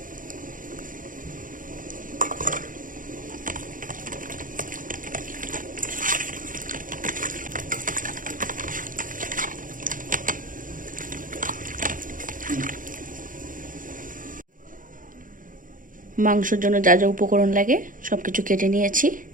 মাংসের জন্য যা যা উপকরণ লাগে সব কিছু কেটে নিয়েছি।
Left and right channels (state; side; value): late; left; 0.39 ms